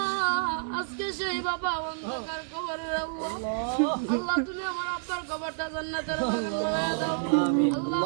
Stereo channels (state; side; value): silent; left; digital silence